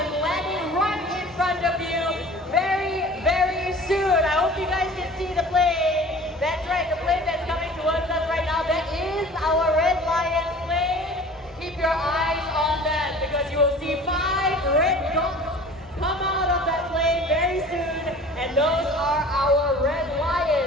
landing right in front of you very, very soon. I hope you guys can see the plane. That's right, the plane that's coming towards us right now, that is our Red Lions plane. Keep your eyes on that because you will see 5 red dots come out of that plane very soon. And those are our Red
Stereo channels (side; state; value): both; normal; correlation 0.44